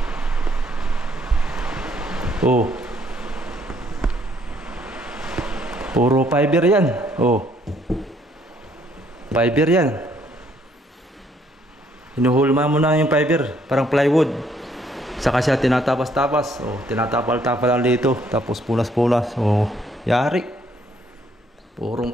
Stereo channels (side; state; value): both; normal; correlation 0.66